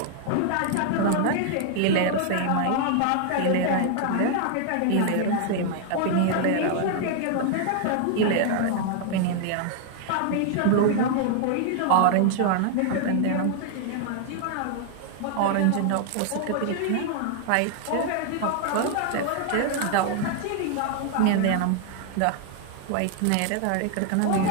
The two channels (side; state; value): both; different; correlation 0.00